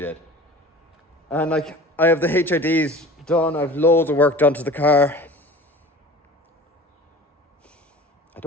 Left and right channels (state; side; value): normal; both; correlation 0.40